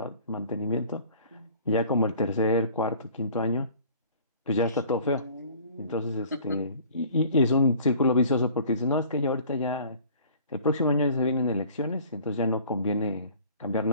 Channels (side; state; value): both; inverted; correlation -0.50